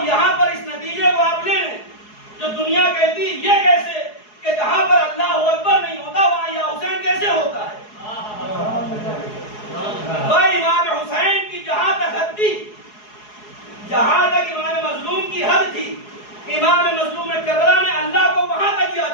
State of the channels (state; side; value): late; right; 4.8 ms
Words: यहाँ पर इस नतीजे को आप ले लें, जो दुनिया कहती ये कैसे कि जहाँ पर अल्लाह अकबर नहीं होता वहाँ या हुसैन कैसे होता है। भाई इमाम हुसैन की जहाँ तक हद थी, जहाँ तक इमाम मजलूम की हद थी, इमाम मजलूम करबला ने अल्लाह को वहाँ तक